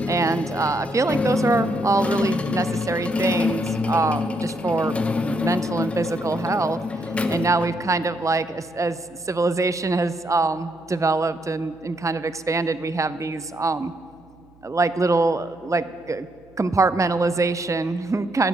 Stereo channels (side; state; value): right; noise; hum, 29 dB below the sound